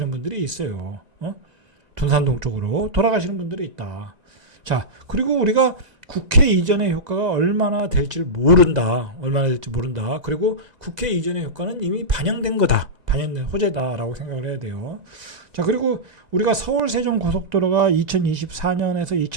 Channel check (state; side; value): late; left; 1.9 ms